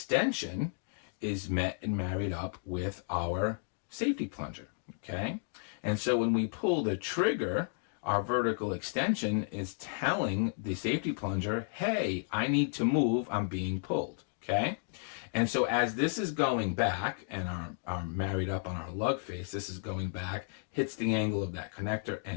is met and married up with our safety plunger, okay? And so when we pull the trigger, our vertical extension is telling the safety plunger, hey, I need to move, I'm being pulled, okay? And so as this is going back, and our married up on our lug face, this is going back, hits the angle of that connector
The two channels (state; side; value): silent; right; digital silence